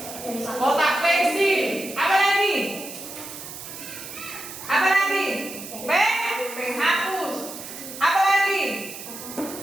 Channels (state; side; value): noise; right; hiss, 11 dB below the sound